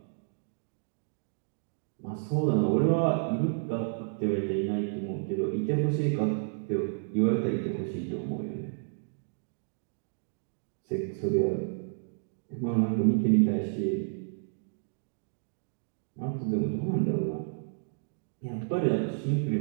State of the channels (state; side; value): silent; left; digital silence